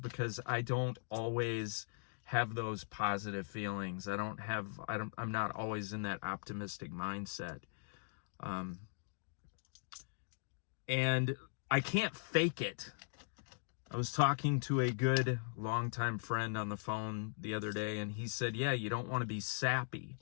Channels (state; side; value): silent; right; digital silence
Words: I don't always have those positive feelings. I'm not always in that optimistic mindset. And I can't fake it. I was talking to a good longtime friend on the phone the other day, and he said, yeah, you don't want to be sappy.